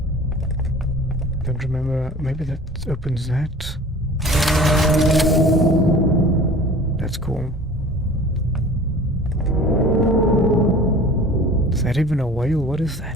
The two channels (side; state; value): both; normal; correlation 0.43